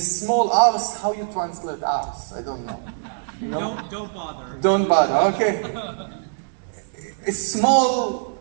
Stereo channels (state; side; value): silent; left; digital silence